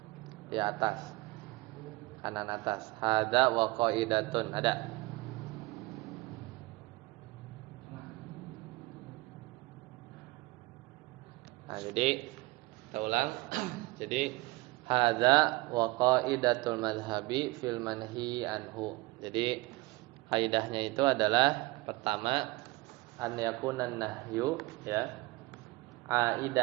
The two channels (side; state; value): left; quieter; 22.0 dB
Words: di atas. Kanan atas. Hadza wa qaidatun, ada. Nah, jadi kita ulang. Jadi hadza wa qaidatul madhhabi fil manhi anhu. Jadi kaidahnya itu adalah pertama an yakunan nahyu ya